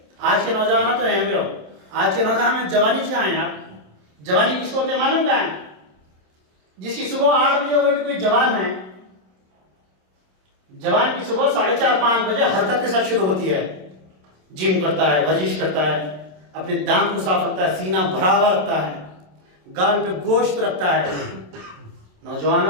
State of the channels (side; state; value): left; late; 27 ms